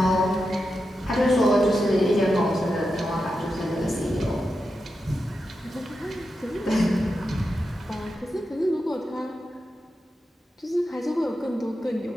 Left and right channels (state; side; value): normal; both; correlation 0.89